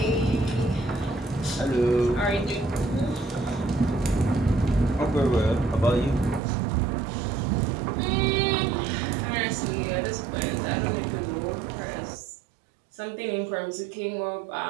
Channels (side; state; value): left; drops out; at 6.4 s